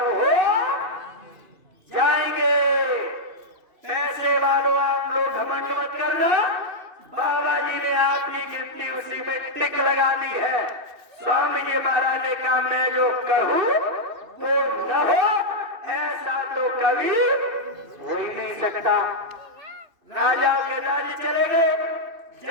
हो जाएंगे। पैसे वालों, आप लोग घमंड मत करना, बाबा जी ने आपकी गिनती उसी में टिक लगा दी है। स्वामी जी महाराज ने कहा, मैं जो कहूं वो न हो, ऐसा तो कभी हो ही नहीं सकता। राजाओं के राज्य चले गए,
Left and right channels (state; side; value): late; left; 3.0 ms